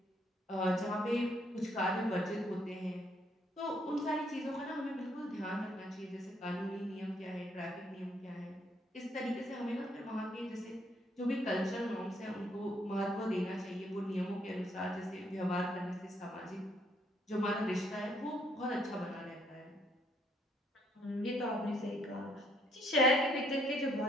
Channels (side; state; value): both; normal; correlation 0.69